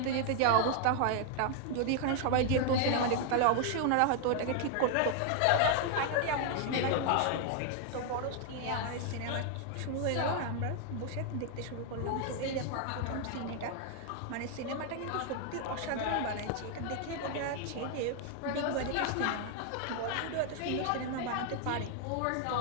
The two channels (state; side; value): different; both; correlation 0.00